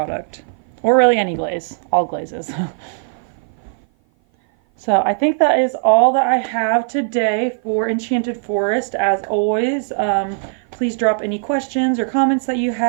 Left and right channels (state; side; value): silent; left; 56 dB below the other